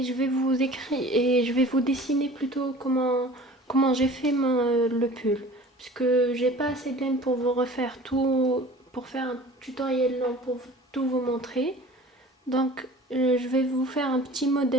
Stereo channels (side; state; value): both; normal; correlation 0.44